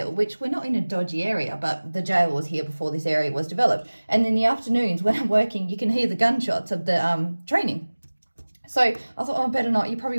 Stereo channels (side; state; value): both; inverted; correlation -1.00